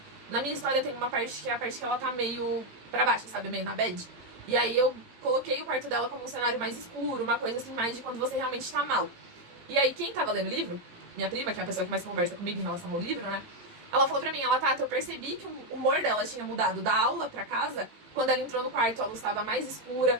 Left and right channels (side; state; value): left; late; 18 ms